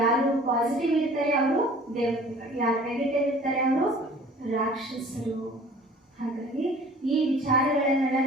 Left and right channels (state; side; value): normal; both; correlation 0.48